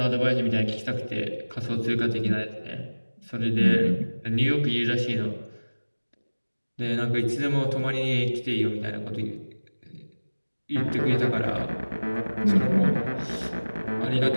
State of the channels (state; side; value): inverted; both; correlation -1.00